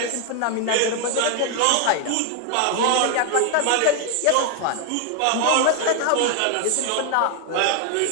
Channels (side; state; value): both; different; correlation 0.01